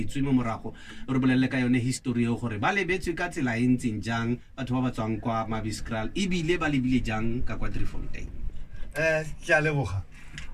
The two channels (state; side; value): identical; both; correlation 1.00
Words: mo morago. Re bolelele ka yone history eo gore ba lebetswe ka tsela e ntseng jang batho ba ba tswang kwa Mabeskraal ebile ba lebile jang ka kwa Driefontein. Ke a leboga.